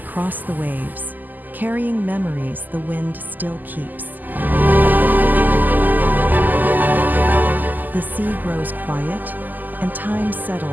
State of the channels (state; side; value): late; left; 0.085 ms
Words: cross the waves, carrying memories the wind still keeps. The sea grows quiet, and time